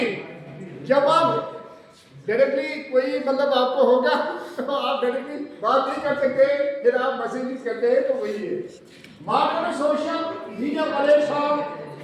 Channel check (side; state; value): both; identical; correlation 1.00